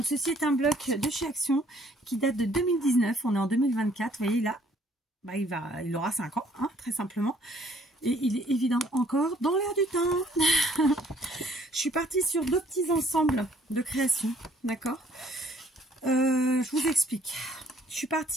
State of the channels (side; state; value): both; normal; correlation 0.61